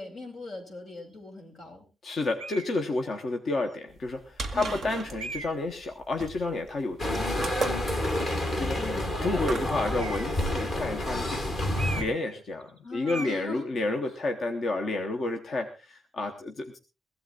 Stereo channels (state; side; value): normal; both; correlation 0.80